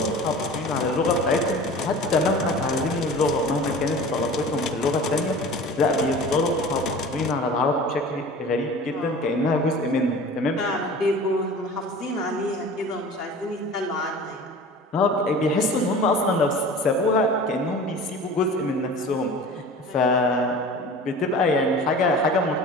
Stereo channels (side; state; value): both; normal; correlation 0.39